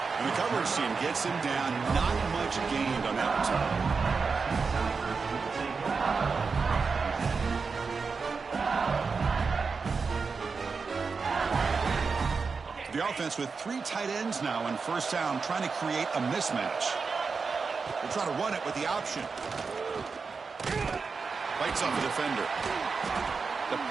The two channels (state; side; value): quieter; left; 4.9 dB